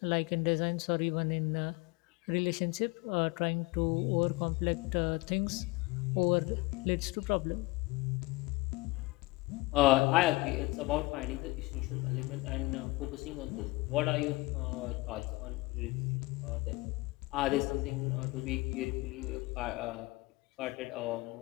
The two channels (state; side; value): quieter; right; 22.5 dB